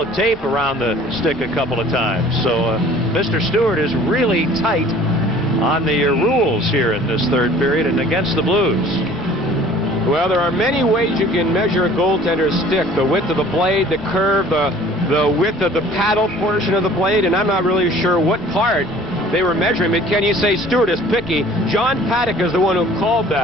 of tape around the stick a couple of times. So Mr. Stewart is really tight on the rules here in this third period and against the Blues. Well, there are many ways you can measure a goaltender's stick. The width of the blade, the curve, the width of the paddle portion of the blade, and I'm not really sure what part they were measuring. But can you say Stewart is picky? John Paddock is the one who called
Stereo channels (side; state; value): both; normal; correlation 0.50